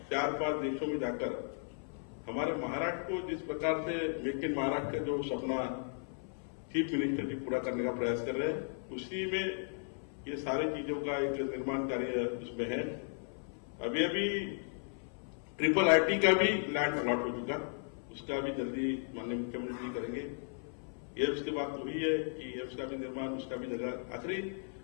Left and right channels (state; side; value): silent; right; 54 dB below the other